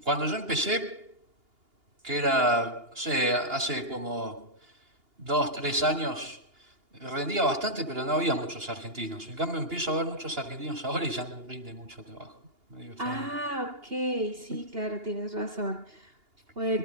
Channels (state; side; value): late; left; 2.8 ms